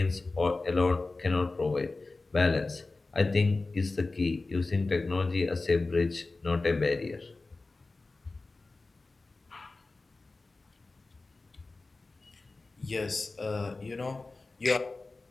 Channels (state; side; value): quieter; right; 3.5 dB